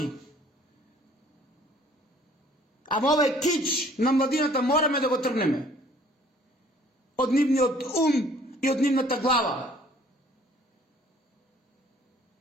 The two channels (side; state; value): both; normal; correlation 0.57